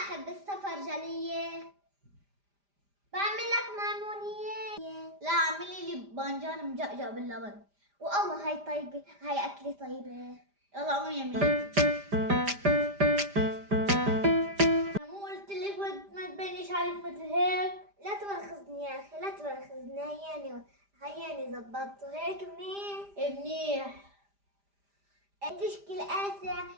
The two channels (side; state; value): left; late; 5.0 ms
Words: السفرجلية، بعمل لك ميمونية. لا اعملي لي بانجان مجقجق باللبن. والله هاي طيبة، هاي أكلة طيبة. يلا قومي اعملي. أنا مو قلت لك ما تبينيش عليك مثل هيك؟ لا تواخذني يا أخي، لا تواخذني. هياني زبطته هيك منيح. تشكي القاسة